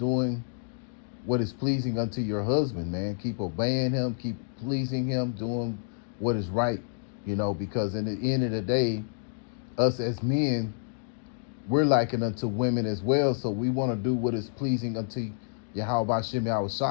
what is pleasing unto your husband, man. Keep obeying him, keep pleasing him, doing what is right, you know, because in the end of the day, us as men, we're likened unto women as well, so we want to do what is pleasing unto Yahweh Bashem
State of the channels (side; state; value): right; silent; digital silence